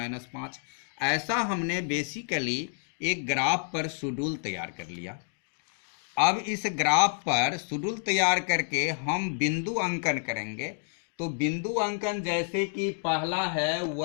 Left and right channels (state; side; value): silent; right; digital silence